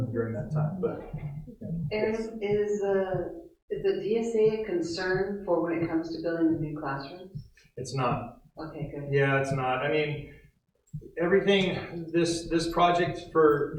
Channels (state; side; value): identical; both; correlation 1.00